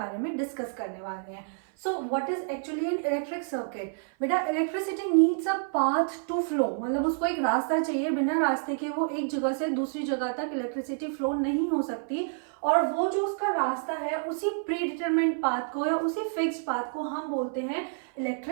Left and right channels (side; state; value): left; silent; 57 dB below the other